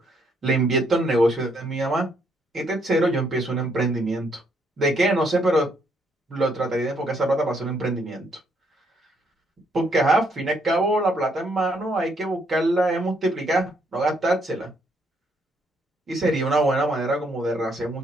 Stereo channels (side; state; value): both; normal; correlation 0.72